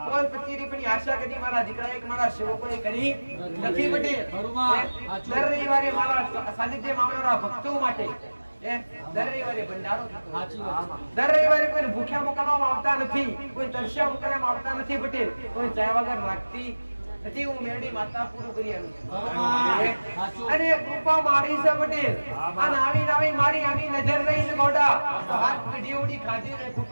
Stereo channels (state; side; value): inverted; both; correlation -1.00